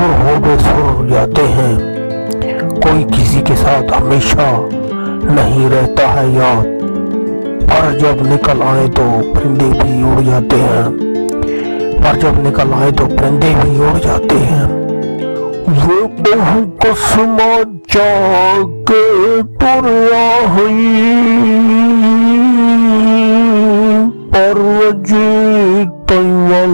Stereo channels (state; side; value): inverted; both; correlation -1.00